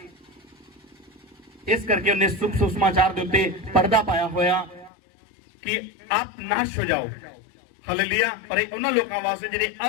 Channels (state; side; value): drops out; right; at 4.9 s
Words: इस करके उन्हें शुभ सुसमाचार के उत्ते पर्दा पाया होया कि आप नाश हो जाओ। हालेलुया। पर उन्हां लोकां वास्ते जिहड़े